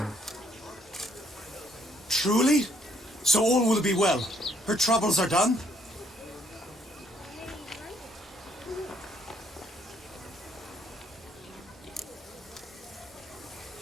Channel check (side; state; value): both; normal; correlation 0.67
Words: Truly? So all will be well. Her troubles are done?